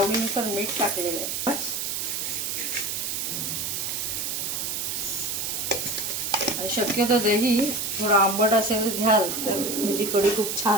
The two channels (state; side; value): noise; right; hiss, 2 dB below the sound